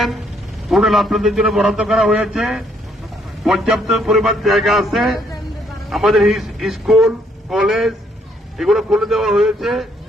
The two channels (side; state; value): both; normal; correlation 0.69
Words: হোটেল আপনাদের জন্য বরাদ্দ করা হয়েছে, পর্যাপ্ত পরিমাণ জায়গা আছে। আমাদের স্কুল কলেজ এগুলো খুলে দেওয়া হয়েছে।